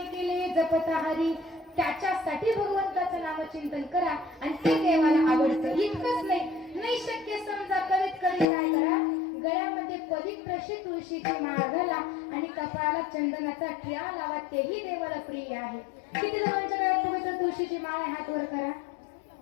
केले जपता हरी. त्याच्यासाठी भगवंताचं नामचिंतन करा आणि ते देवाला आवडतं. इतकंच नाही शक्य समजा करीत करीत काय करा, गळ्यामध्ये पवित्र अशी तुळशीची माळ घाला आणि कपाळाला चंदनाचा टिळा लावा, तेही देवाला प्रिय आहे. किती जणांच्या गळ्यात पवित्र तुळशीची माळ आहे, हात वर करा.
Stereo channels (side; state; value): right; drops out; at 8.5 s